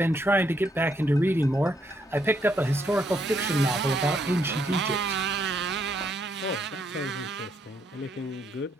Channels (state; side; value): normal; both; correlation 0.74